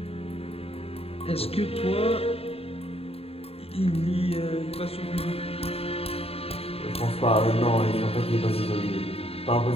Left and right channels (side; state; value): right; late; 0.28 ms